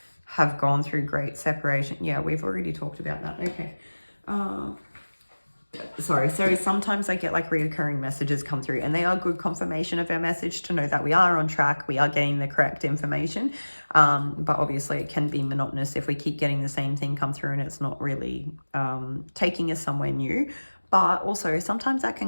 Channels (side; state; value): both; inverted; correlation -1.00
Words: have gone through great separation. Yeah, we've already talked about that. Okay. Sorry. So sometimes I get like reoccurring messages come through, and they are good confirmation of our message to know that we are on track, we are getting the correct information. But obviously it can be monotonous if we keep getting the same thing come through and it's not really taking us somewhere new. But also sometimes that